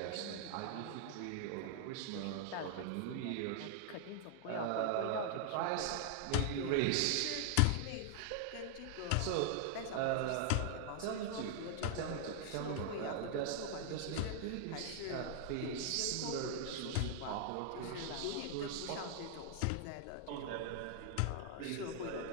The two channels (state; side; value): different; both; correlation 0.00